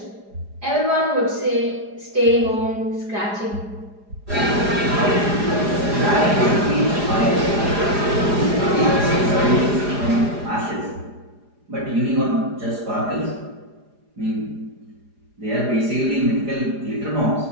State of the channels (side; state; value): left; late; 4.9 ms